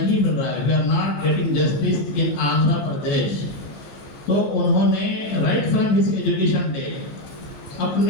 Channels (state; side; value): late; right; 15 ms